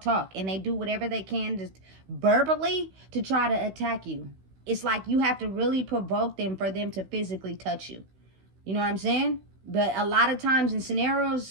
And they do whatever they can just verbally to try to attack you. It's like you have to really provoke them for them to physically touch you. You know what I'm saying? But a lot of times in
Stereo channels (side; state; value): left; late; 16 ms